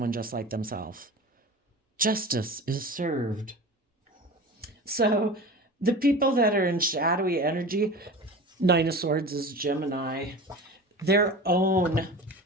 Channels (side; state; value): both; normal; correlation 0.34